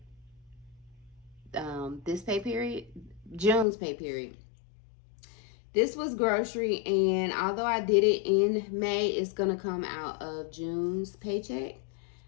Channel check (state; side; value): drops out; right; at 3.7 s